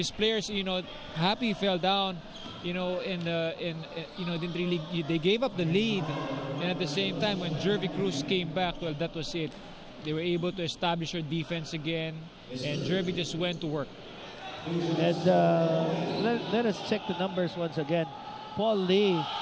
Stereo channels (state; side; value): identical; both; correlation 1.00